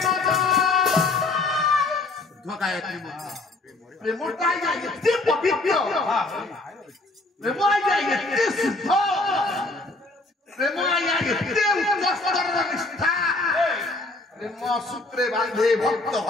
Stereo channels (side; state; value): right; quieter; 3.0 dB